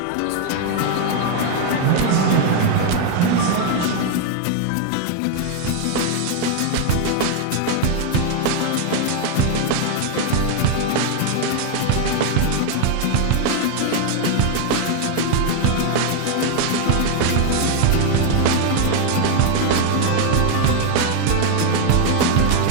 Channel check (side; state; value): both; different; correlation 0.01